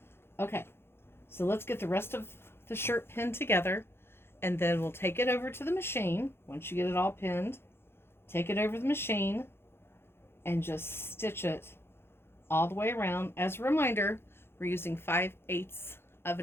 Okay, so let's get the rest of the shirt pinned together, and then we'll take it over to the machine. Once you get it all pinned, take it over to the machine and just stitch it all the way around. As a reminder, we're using 5/8 of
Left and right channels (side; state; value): right; late; 0.11 ms